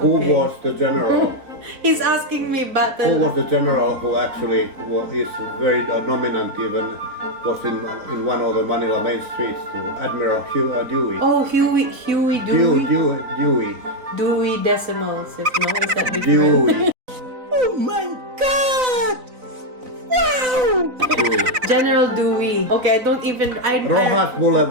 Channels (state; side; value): late; left; 4.0 ms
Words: Okay. was the general? He's asking me Who battle. was the general who actually is very dominant, even was in one of the Manila main streets, to Admiral Dewey. Oh, Huey Dewey. Dewey Decimals. If no, is that different? Dewey. General Dewey. Okay, I don't even. Rojas